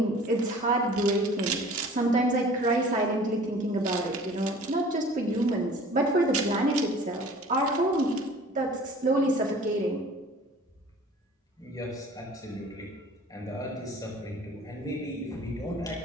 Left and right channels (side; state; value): both; normal; correlation 0.47